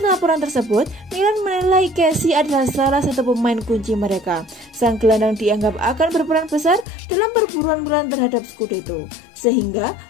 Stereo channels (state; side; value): drops out; right; at 6.9 s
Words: laporan tersebut, Milan menilai Casey adalah salah satu pemain kunci mereka. Sang gelandang dianggap akan berperan besar dalam perburuan Milan terhadap Scudetto, sehingga